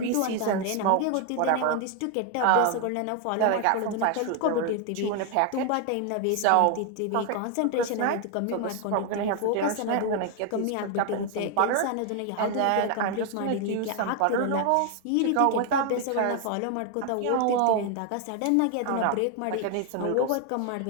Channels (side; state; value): both; different; correlation 0.01